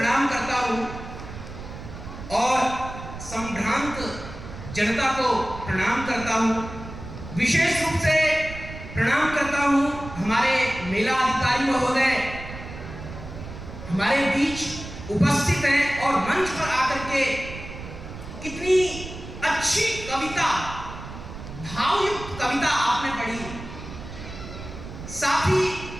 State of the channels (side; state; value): right; noise; rumble, 12 dB below the sound